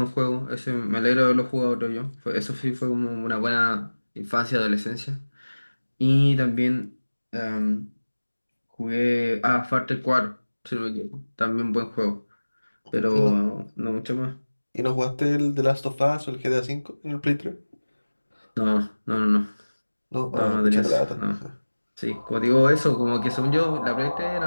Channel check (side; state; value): both; inverted; correlation -1.00